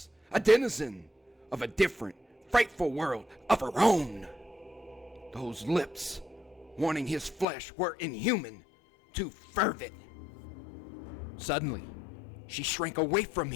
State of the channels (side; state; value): right; drops out; at 7.5 s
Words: a denizen of a different, frightful world of her own. Those lips, wanting his flesh, were inhuman, too fervid. Suddenly, she shrank away from